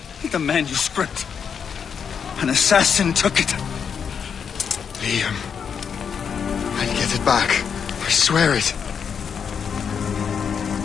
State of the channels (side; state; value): right; quieter; 7.0 dB